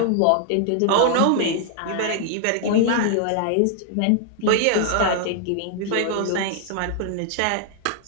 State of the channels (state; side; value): different; both; correlation 0.00